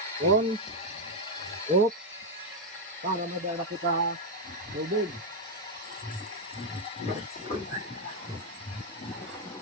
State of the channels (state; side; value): normal; both; correlation 0.02